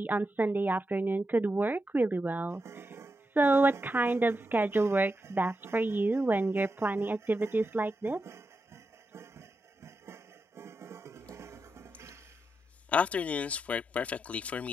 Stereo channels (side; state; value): both; normal; correlation 0.87